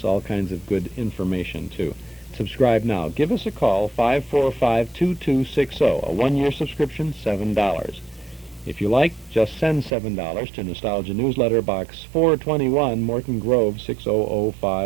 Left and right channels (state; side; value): drops out; left; at 10.0 s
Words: all kinds of good information, too. Subscribe now. Give us a call, 545-2260. A one-year subscription, $7. If you like, just send $7 to Nostalgia Newsletter, Box 421, Morton Grove,